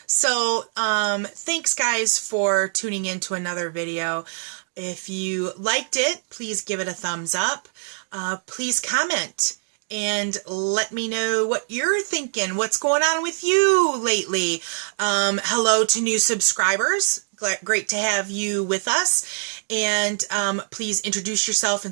So thanks guys for tuning in to another video. If you liked it, please give it a thumbs up. Please comment and let me know what you're thinking. What's going on with you lately? Hello to new subscribers. Great to have you with us. And please introduce yourself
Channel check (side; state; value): left; silent; 61 dB below the other